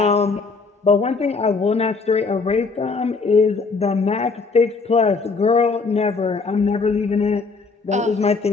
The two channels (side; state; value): right; quieter; 4.4 dB